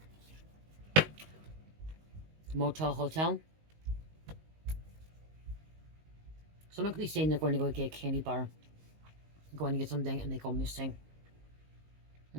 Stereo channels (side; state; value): left; late; 19 ms